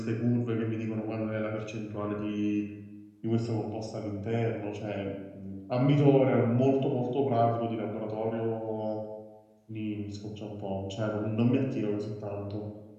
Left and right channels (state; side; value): identical; both; correlation 1.00